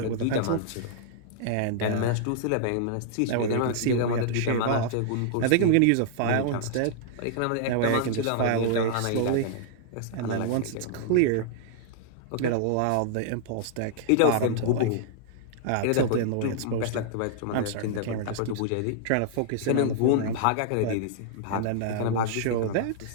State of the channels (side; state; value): both; different; correlation -0.01